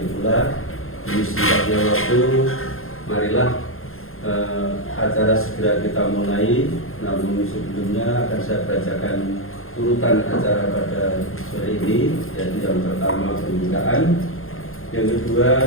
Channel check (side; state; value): right; late; 0.61 ms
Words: pula. Di singkatnya waktu, marilah acara segera kita mulai. Namun sebelumnya akan saya bacakan urutan acara pada sore ini, yaitu yang pertama pembukaan, yang kedua